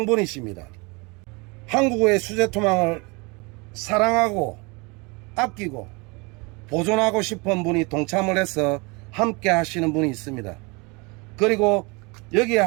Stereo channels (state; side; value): quieter; left; 28.3 dB